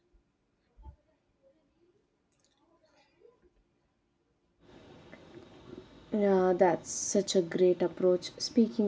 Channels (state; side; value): identical; both; correlation 1.00